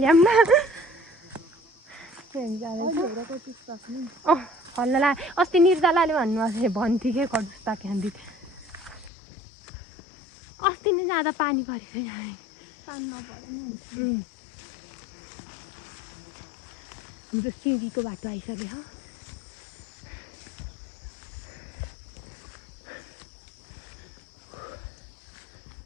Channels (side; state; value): right; drops out; at 9.1 s